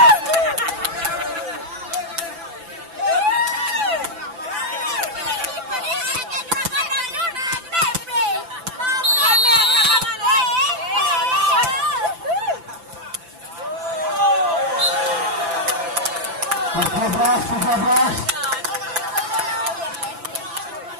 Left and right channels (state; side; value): late; left; 5.9 ms